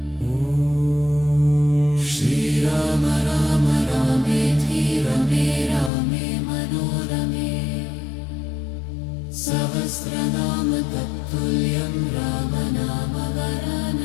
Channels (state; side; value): drops out; right; at 5.9 s